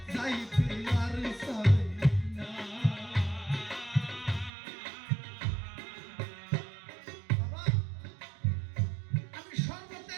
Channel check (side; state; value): left; drops out; at 4.5 s